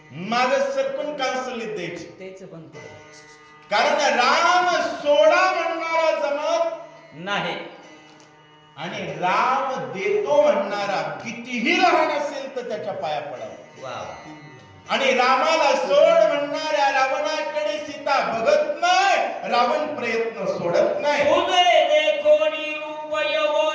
माग सरकून कांसुलीत द्यायची. तेच पण कारण राम सोडा म्हणणारा जमत नाही आणि राम देतो म्हणणारा कितीही लहान असेल तर त्याच्या पाया पडावा. आणि रामाला सोड म्हणणाऱ्या रावणाकडे सीता बघत नाही, रावण प्रयत्न सोडत नाही. उभे देखोनी रूप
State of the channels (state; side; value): identical; both; correlation 1.00